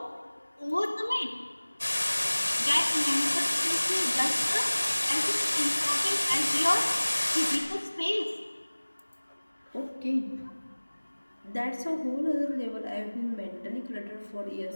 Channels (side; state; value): both; inverted; correlation -1.00